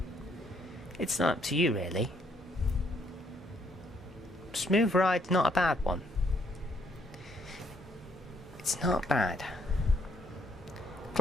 It's not up to you, really. Smooth Ride's not a bad one. It's not bad.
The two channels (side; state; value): both; normal; correlation 0.70